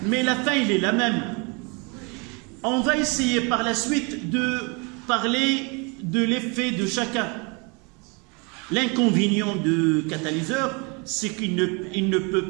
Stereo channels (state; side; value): quieter; left; 31.2 dB